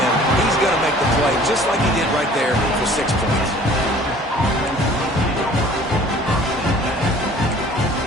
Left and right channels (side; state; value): both; normal; correlation 0.50